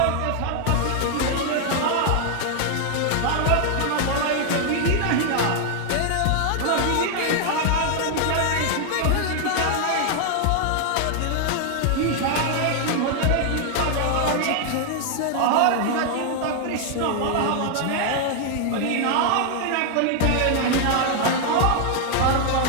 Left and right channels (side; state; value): both; different; correlation 0.00